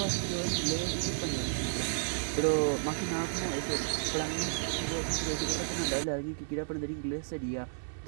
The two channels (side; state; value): left; silent; 56 dB below the other